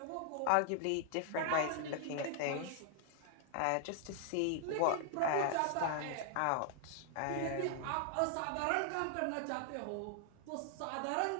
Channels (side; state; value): both; different; correlation 0.00